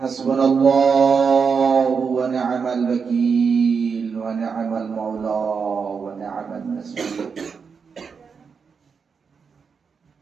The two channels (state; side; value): quieter; left; 5.8 dB